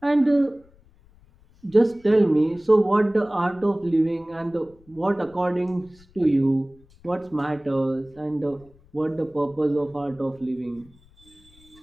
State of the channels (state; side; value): noise; left; rumble, 28 dB below the sound